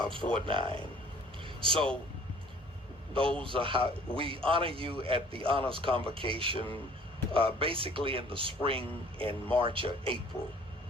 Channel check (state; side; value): normal; both; correlation 0.53